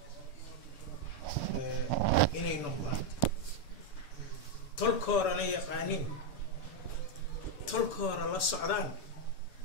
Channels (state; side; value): late; right; 6.9 ms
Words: inay noqdaan tolkoorana yaqaaniin tolkoora la socdaan